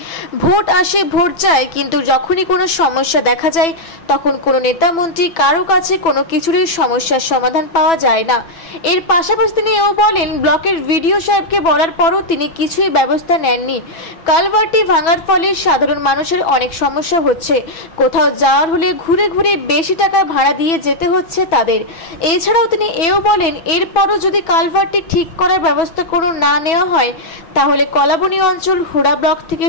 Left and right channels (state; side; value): late; right; 6.1 ms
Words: ভোট আসে, ভোট যায়, কিন্তু যখনই কোনো সমস্যা দেখা যায় তখন কোনো নেতা মন্ত্রী কারো কাছে কোনো কিছুরই সমস্যার সমাধান পাওয়া যায় না। এর পাশাপাশি তিনি এও বলেন, ব্লকের ভিডিও সাহেবকে বলার পরও তিনি কিছুই ব্যবস্থা নেননি। কালভার্টটি ভাঙার ফলে সাধারণ মানুষের অনেক সমস্যা হচ্ছে। কোথাও যাওয়ার হলে ঘুরে ঘুরে বেশি টাকা ভাড়া দিয়ে যেতে হচ্ছে তাদের। এছাড়াও তিনি এও বলেন, এরপরও যদি কালভার্টটি ঠিক করার ব্যবস্থা কোনো না নেওয়া হয় তাহলে কলাবনি অঞ্চল হুড়া ব্লক থেকে